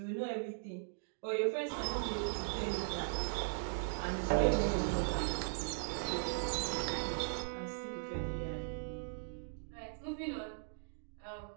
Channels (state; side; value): silent; left; digital silence